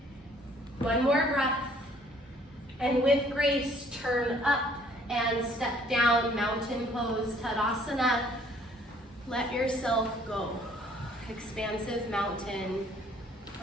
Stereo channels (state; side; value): normal; both; correlation 0.60